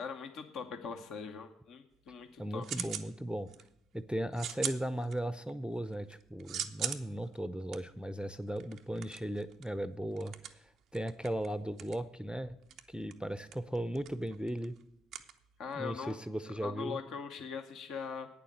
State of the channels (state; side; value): normal; both; correlation 0.85